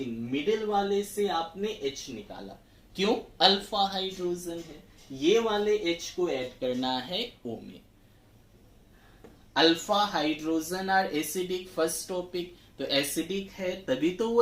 मिडिल वाले से आपने H निकाला, क्यों, अल्फा हाइड्रोजन है। ये वाले H को ऐड करना है O में। Alpha hydrogen are acidic, first topic, तो एसिडिक है तभी तो वो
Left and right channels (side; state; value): both; identical; correlation 1.00